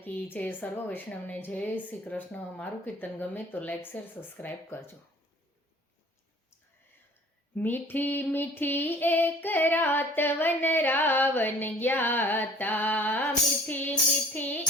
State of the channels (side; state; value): both; normal; correlation 0.49